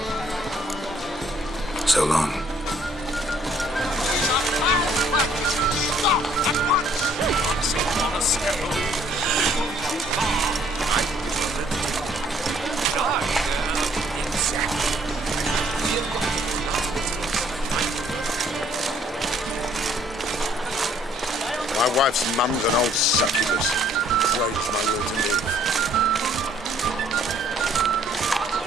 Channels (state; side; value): normal; both; correlation 0.62